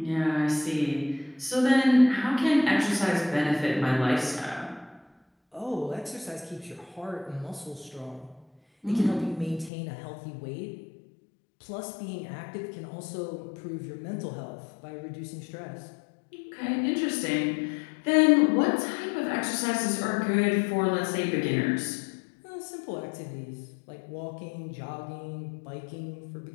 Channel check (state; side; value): drops out; right; at 9.7 s